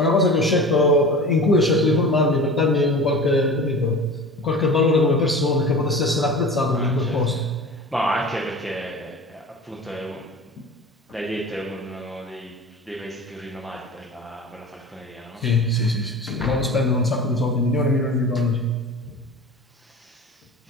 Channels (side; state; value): both; normal; correlation 0.36